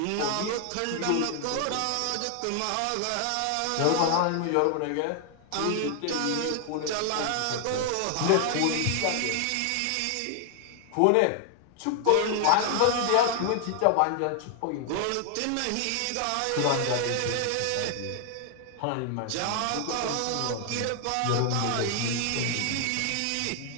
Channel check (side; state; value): both; different; correlation 0.00